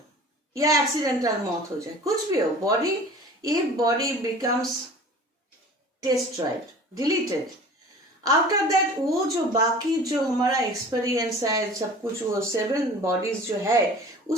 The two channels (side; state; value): both; normal; correlation 0.43